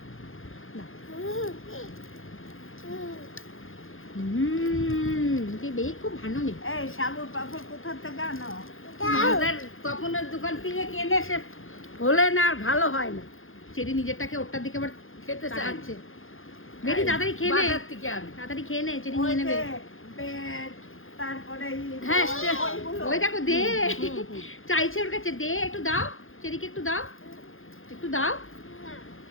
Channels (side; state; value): right; late; 0.59 ms